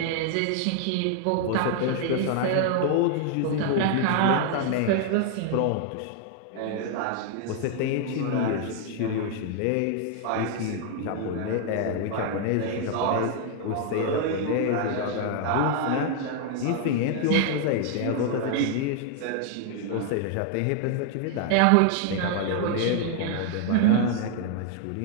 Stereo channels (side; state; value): both; different; correlation 0.00